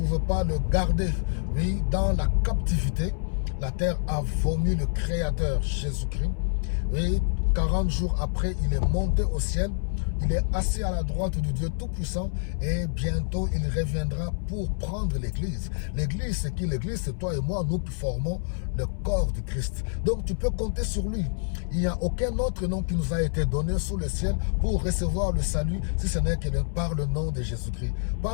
pas le garder. Oui, dans la captivité, la terre a vomi le Créateur Jésus-Christ. Oui, 40 jours après, il est monté au ciel. Il est assis à la droite du Dieu Tout-Puissant et bientôt il reviendra pour prendre l'Église. L'Église, c'est qui? L'Église, c'est toi et moi, nous qui formons le corps du Christ. Donc tu peux compter sur lui. Il n'y a aucun autre nom qui nous a été donné sous le ciel pour recevoir le salut, si ce n'est que par le nom de Jésus-Christ.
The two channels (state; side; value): silent; right; 60 dB below the other